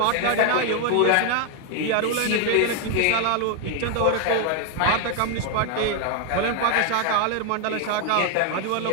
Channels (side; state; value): both; different; correlation 0.00